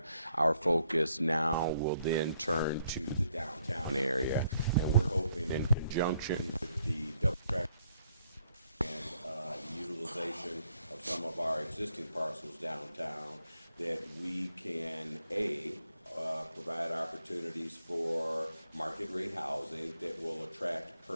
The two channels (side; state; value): both; inverted; correlation -0.72